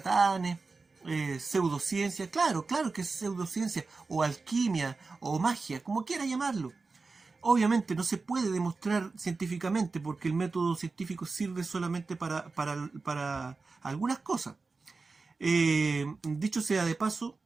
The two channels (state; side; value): quieter; left; 4.0 dB